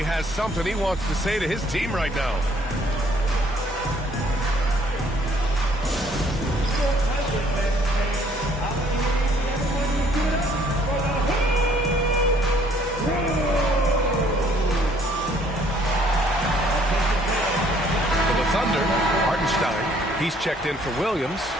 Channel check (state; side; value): normal; both; correlation 0.62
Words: has something he wants to say to his team right now. Thunder, Hartenstein, he's checked in for Williams.